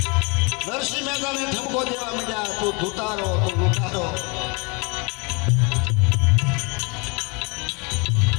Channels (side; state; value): right; quieter; 30.6 dB